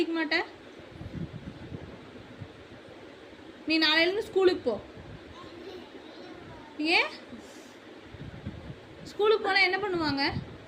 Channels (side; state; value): both; identical; correlation 1.00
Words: மாட்ட? நீ நாளையிலேருந்து ஸ்கூலுக்கு போ. ஏன் ஸ்கூலுக்கு போனால் என்ன பண்ணுவாங்க?